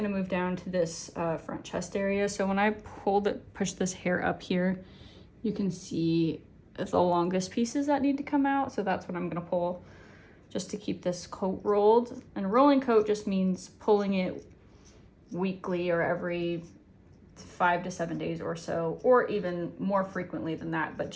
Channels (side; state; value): both; identical; correlation 1.00